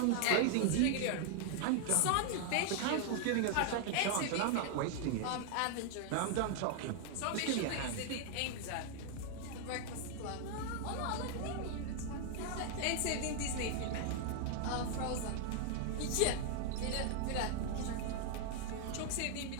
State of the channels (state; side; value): different; both; correlation 0.00